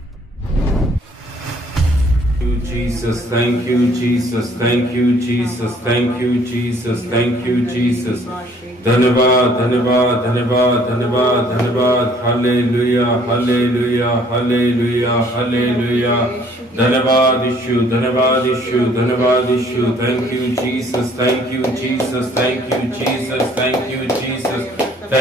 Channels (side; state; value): both; normal; correlation 0.59